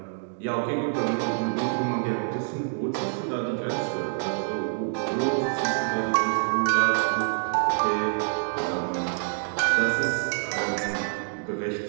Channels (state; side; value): silent; left; digital silence